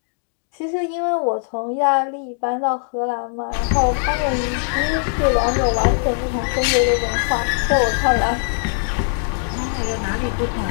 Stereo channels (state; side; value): silent; right; digital silence